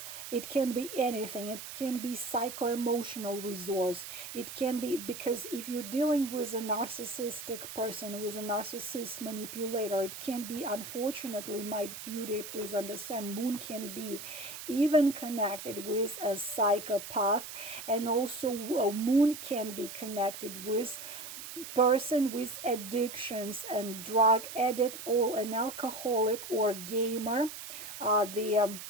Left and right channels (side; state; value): right; noise; hiss, 10 dB below the sound